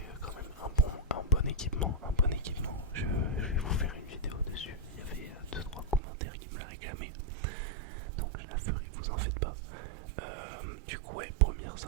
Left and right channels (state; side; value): drops out; left; at 6.0 s